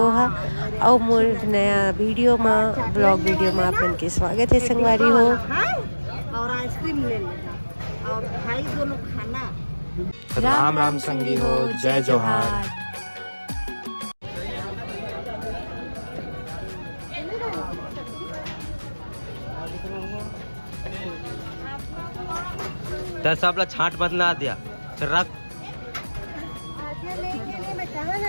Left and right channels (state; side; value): inverted; both; correlation -1.00